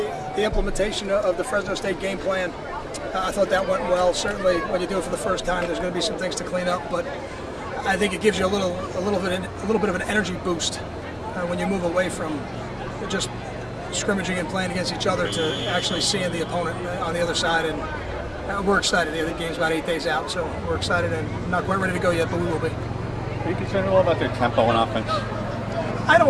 the implementation of the Fresno State game plan. I thought that went well. Certainly, when you do it for the first time, there's going to be some things to clean up, but I think it gives you a little bit of an energy boost when you move away from just scrimmaging and playing against each other to actually seeing the opponent on the other side. And we're excited. The game's about 8 days out, so we're excited and not quite ready to go yet, but we will be. Are you concerned at all about their tempo on offense? I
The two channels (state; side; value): identical; both; correlation 1.00